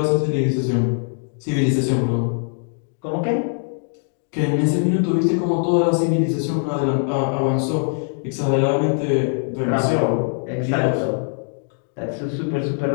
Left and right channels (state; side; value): silent; right; 64 dB below the other